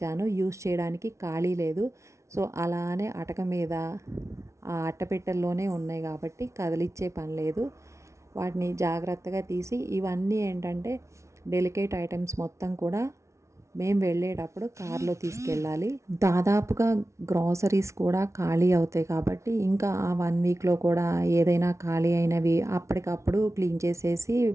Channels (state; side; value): late; left; 0.14 ms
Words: యూజ్ చేయడానికి ఖాళీ లేదు. సో అలానే అటక మీద ఆ అట్టపెట్టెల్లోనే ఉన్నాయి కాబట్టి కదిలిచ్చే పని లేదు. వాటిని జాగ్రత్తగా తీసి, ఇవన్నీ ఏంటంటే డెలికేట్ ఐటమ్స్ మొత్తం కూడా మేము వెళ్ళేటప్పుడు కార్లో తీసుకెళ్ళాలి. దాదాపుగా గ్రాసరీస్ కూడా ఖాళీ అవుతాయి కాబట్టి ఇంకా ఆ 1 వీక్లో కూడా ఏదైనా ఖాళీ అయినవి అప్పటికప్పుడు క్లీన్ చేసేసి